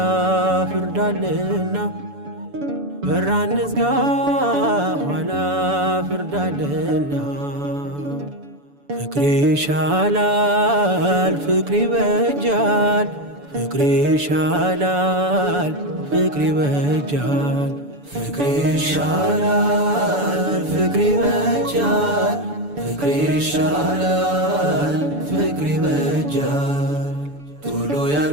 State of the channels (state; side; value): late; left; 6.9 ms